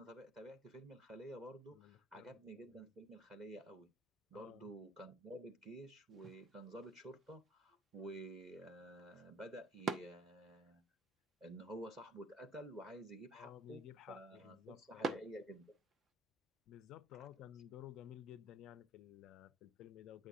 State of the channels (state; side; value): normal; both; correlation 0.56